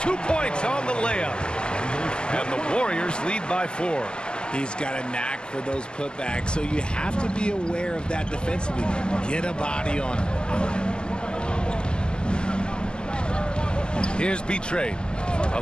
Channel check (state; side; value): late; right; 0.047 ms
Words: 2 points on the layup. And the Warriors lead by 4. He's got a knack for those putbacks, so you have to be aware of that defensively. Get a body on him. Here's B-Trade.